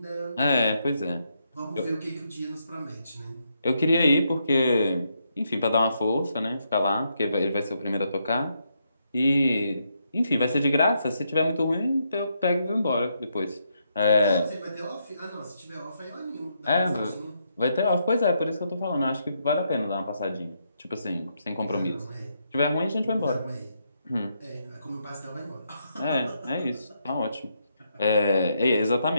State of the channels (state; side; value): inverted; both; correlation -0.79